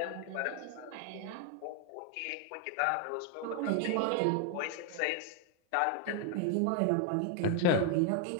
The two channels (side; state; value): both; different; correlation 0.00